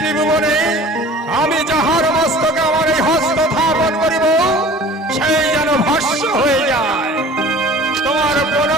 আমি যাহার মস্তকে আমার এই হস্ত স্থাপন করিব সেই যেন ভস্ম হয়ে যায়। তোমার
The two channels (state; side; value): normal; both; correlation 0.44